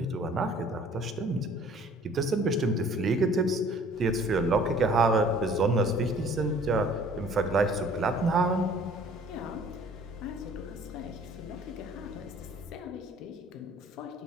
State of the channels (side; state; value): both; normal; correlation 0.53